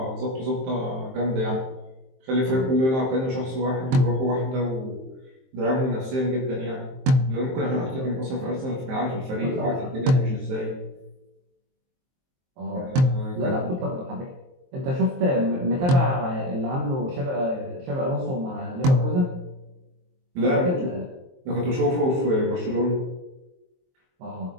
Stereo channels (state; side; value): late; left; 23 ms